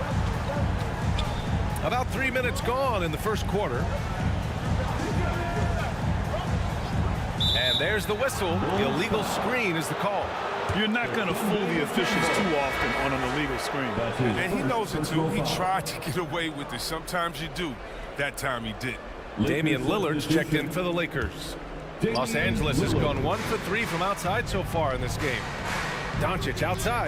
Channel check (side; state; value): both; identical; correlation 1.00